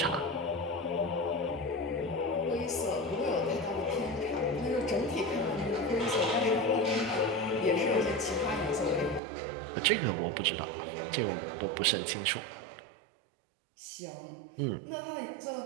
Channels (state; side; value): drops out; left; at 9.2 s